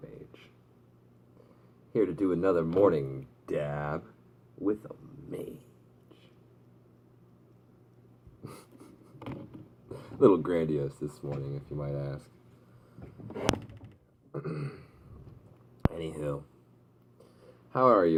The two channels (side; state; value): both; identical; correlation 1.00